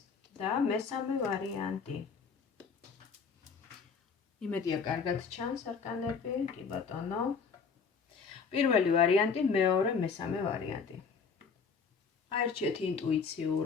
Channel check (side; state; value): right; quieter; 5.6 dB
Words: და მესამე ვარიანტი. იმედია კარგად ჩანს არკანები, კი ბატონო. პირველი ვარიანტი, მეორე, მესამე ვარიანტი. აერჩიეთ